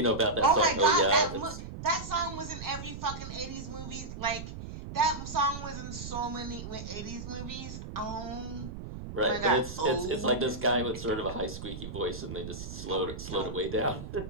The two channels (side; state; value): right; noise; rumble, 9 dB below the sound